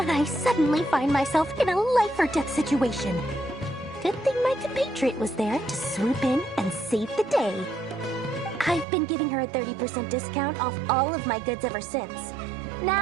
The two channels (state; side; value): drops out; left; at 8.8 s